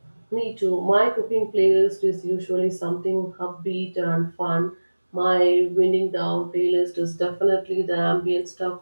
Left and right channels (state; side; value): inverted; both; correlation -1.00